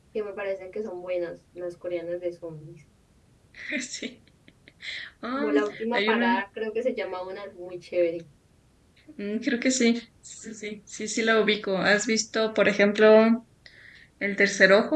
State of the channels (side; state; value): both; identical; correlation 1.00